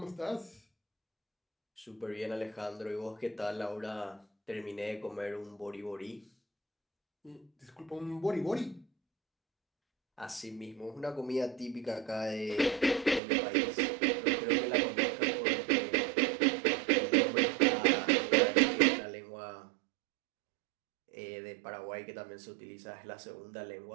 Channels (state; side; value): drops out; left; at 13.2 s